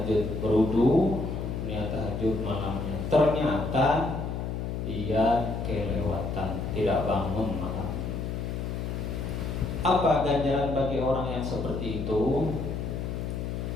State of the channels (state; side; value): noise; left; hum, 3 dB below the sound